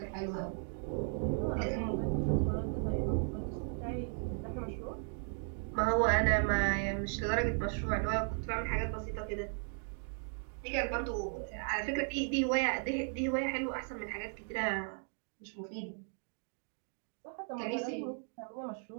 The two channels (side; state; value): left; silent; 54 dB below the other